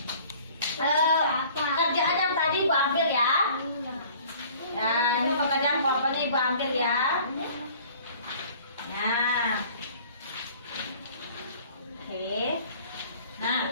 Nah, oke. Nah,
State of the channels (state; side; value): inverted; both; correlation -0.51